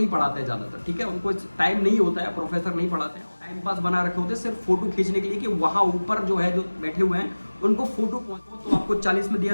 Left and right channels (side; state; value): both; inverted; correlation -1.00